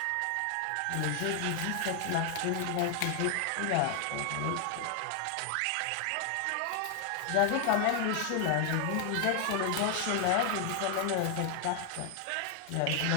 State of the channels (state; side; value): different; both; correlation 0.00